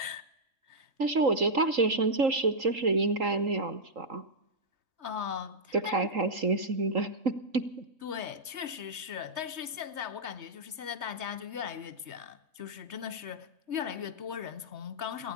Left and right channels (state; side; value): late; left; 3.8 ms